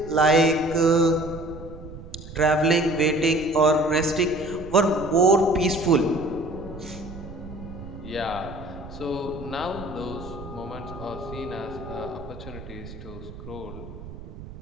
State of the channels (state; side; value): noise; right; rumble, 14 dB below the sound